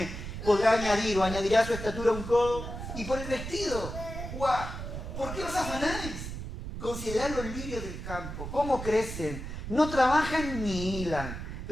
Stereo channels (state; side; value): noise; right; rumble, 7 dB below the sound